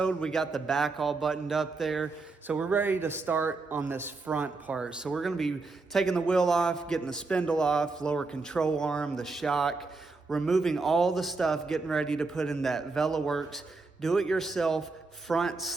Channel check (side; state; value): left; quieter; 3.8 dB